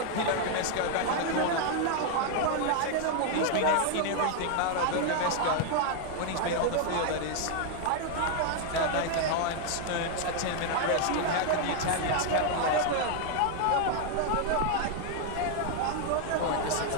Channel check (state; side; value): different; both; correlation 0.00